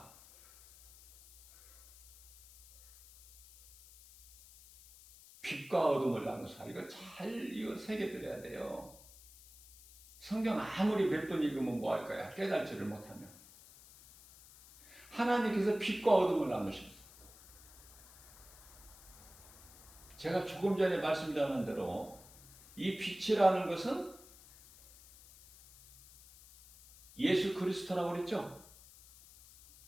빛과 어둠을 나누사. 이거 잘 새겨드려야 돼요. 성경 아무리 몇 번 읽으면 뭐 할 거야? 깨달지를 못하면. 하나님께서 빛과 어둠을 나누셨어요. 제가 조금 전에 말씀드린 대로 이 빛이라는 것은 예수 그리스도라고 그랬죠?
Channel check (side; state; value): left; noise; hiss, 21 dB below the sound